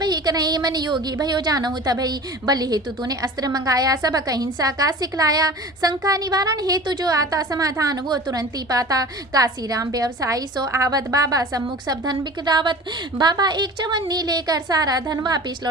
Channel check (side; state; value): both; normal; correlation 0.38